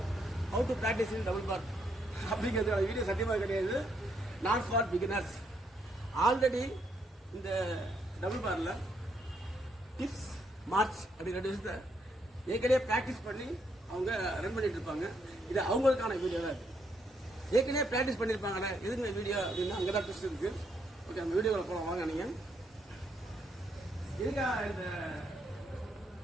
how to practice in double bar அப்படிங்கிறதுக்கான வீடியோ சத்தியமாக கிடையாது. Not for beginners. ஆல்ரெடி இந்த டபுள் பாரில் டிப்ஸ் மார்ச் அப்படிங்கிற விஷயத்தை ஏற்கனவே ப்ராக்டிஸ் பண்ணி அவங்க ரன் பண்ணிட்டு இருப்பாங்க. இது அவங்களுக்கான வீடியோ தான். ஏற்கனவே ப்ராக்டிஸ் பண்ணியிருப்பாங்கல்ல, எதுங்க வீடியோ அப்படின்னா அங்கே தான் ட்விஸ்ட் இருக்கு. ஓகே, நம்ம வீடியோவில் போகலாம் வாங்க. நீங்கள் இருக்கா இந்த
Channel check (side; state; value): both; normal; correlation 0.75